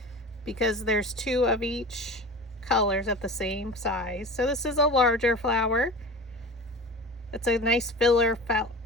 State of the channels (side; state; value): both; normal; correlation 0.34